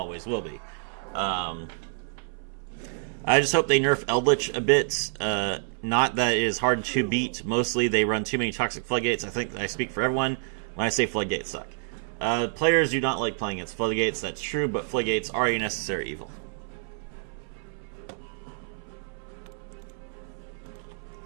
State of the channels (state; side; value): silent; left; 59 dB below the other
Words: will be. I just hope they nerf Eldlich a bit. Not that it is hard to beat. Mostly they run too many Toxic Floodgates. I think I speak for everyone when I say Floodgates suck. Players do not like playing against Floodgates, that's true, but Floodgates are a necessary evil.